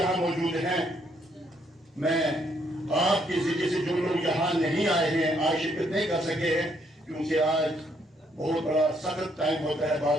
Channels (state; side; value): normal; both; correlation 0.71